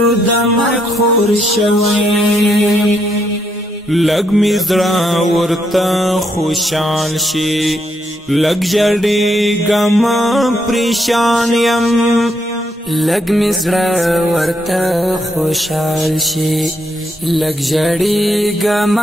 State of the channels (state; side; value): normal; both; correlation 0.76